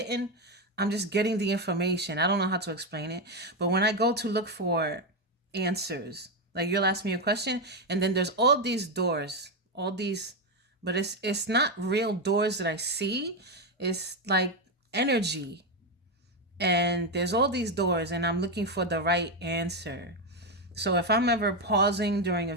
the information. I don't know how to explain it, but when I go to look for answers, like you'll ask me a question and then there's all these doors, but it's not real doors that I see. It's like energy. And there's all these doors and I'm looking for the right answer. So if I'm ever pausing during a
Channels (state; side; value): normal; both; correlation 0.08